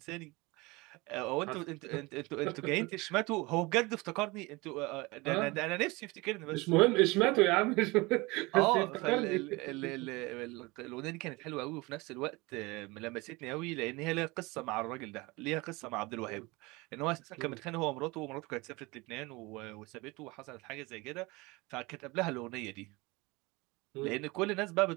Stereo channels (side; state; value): left; quieter; 24.0 dB